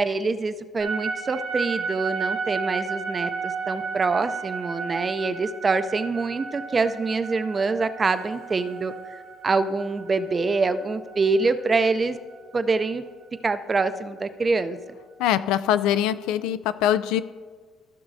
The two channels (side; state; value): both; normal; correlation 0.75